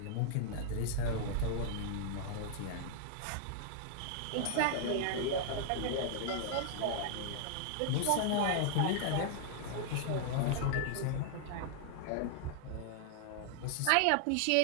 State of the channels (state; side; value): different; both; correlation 0.00